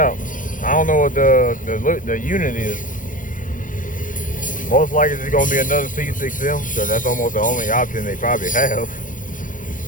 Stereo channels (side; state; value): right; late; 0.38 ms